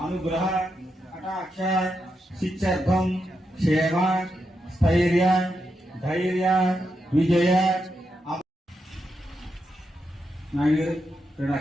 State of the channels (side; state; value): both; normal; correlation 0.84